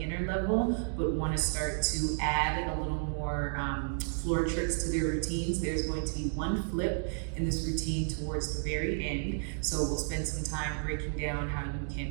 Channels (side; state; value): left; silent; digital silence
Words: level, but wanna start to add a little more floor tricks to their routines. There's going to be one flip in this routine towards the very end. So we'll spend some time breaking down how you